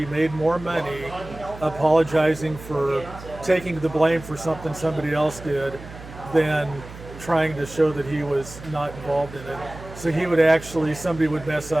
made more money apologizing for taking the blame for something somebody else did than trying to show that he was not involved in it. So he would actually, somebody would mess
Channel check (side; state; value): right; noise; hum, 15 dB below the sound